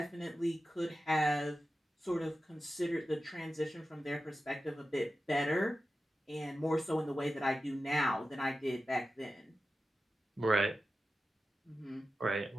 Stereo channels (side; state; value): both; normal; correlation 0.93